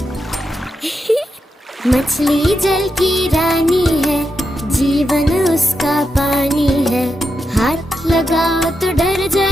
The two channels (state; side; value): normal; both; correlation 0.86